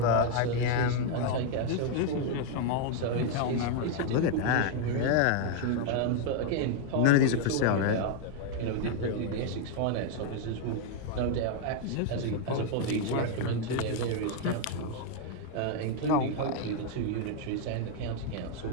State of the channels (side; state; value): both; different; correlation 0.00